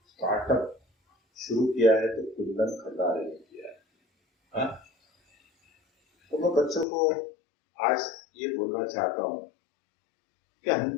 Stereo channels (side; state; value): right; drops out; at 6.9 s